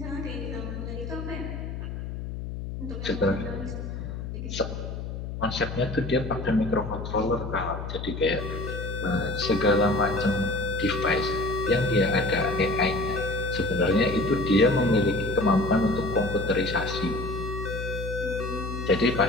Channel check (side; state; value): left; noise; hum, 7 dB below the sound